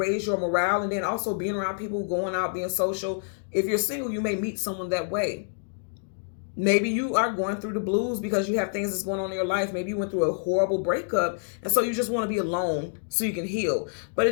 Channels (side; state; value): right; silent; digital silence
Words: your morale. And then also being around people, going out, being social. If you're single, you may meet someone that way. Maybe you are going through the blues because you have things that's going on in your life. Maybe you went through a horrible breakup, and so you just want to be alone so you can heal. But